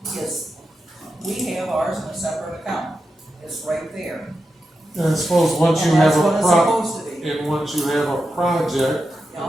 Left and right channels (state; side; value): normal; both; correlation 0.89